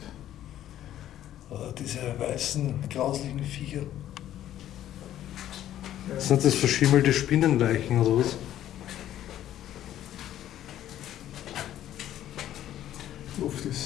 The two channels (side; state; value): right; quieter; 12.1 dB